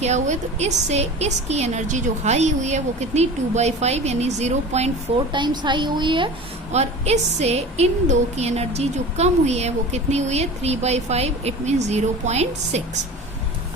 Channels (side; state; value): both; normal; correlation 0.36